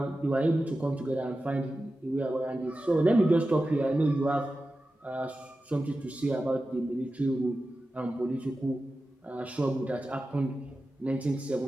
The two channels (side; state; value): both; normal; correlation 0.93